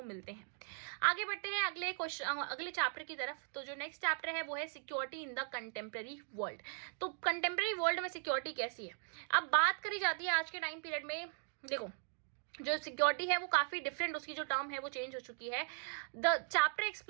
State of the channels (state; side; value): silent; left; 52 dB below the other